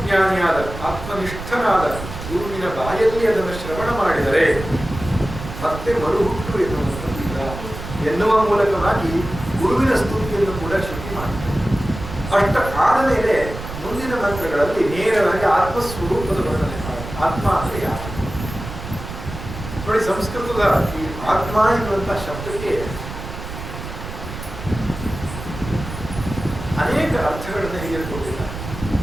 ಆತ್ಮನಿಷ್ಠನಾದ ಗುರುವಿನ ಬಾಯಲ್ಲಿ ಅದನ್ನು ಶ್ರವಣ ಮಾಡಿದರೆ ಮತ್ತೆ ಮರುಹುಟ್ಟು ಎನ್ನುವಂಥದ್ದಿಲ್ಲ ಎನ್ನುವ ಮೂಲಕವಾಗಿ ಗುರುವಿನ ಸ್ತುತಿಯನ್ನು ಕೂಡ ಶ್ರುತಿ ಮಾಡ್ತಾರೆ. ಅಷ್ಟ ಆದ ಮೇಲೆ ಮುಂದಿನ ಮಂತ್ರಗಳಲ್ಲಿ ನೇರವಾಗಿ ಆತ್ಮಸ್ವರೂಪದ ವರ್ಣನೆ ಮಾಡಿ. ಆತ್ಮ ಅಂದರೆ ಯಾರು ನೋಡಿ, ಸಂಸ್ಕೃತದ ಈ ಆತ್ಮ ಎನ್ನುವಂತಹ ಶಬ್ದಕ್ಕೆ ಅನೇಕ ಅರ್ಥಗಳನ್ನು ಹೇಳಿಕೊಟ್ಟಿದ್ದಾರೆ.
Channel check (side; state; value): right; noise; rumble, 10 dB below the sound